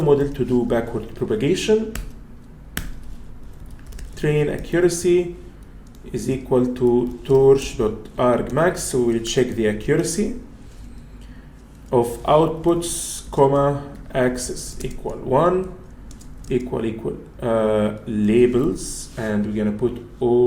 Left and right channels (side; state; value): both; identical; correlation 1.00